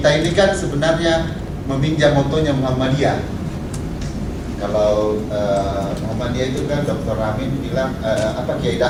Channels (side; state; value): both; identical; correlation 1.00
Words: ini kan sebenarnya meminjam motonya Muhammadiyah. Kalau Muhammadiyah itu kan Dr. Amin bilang Kiai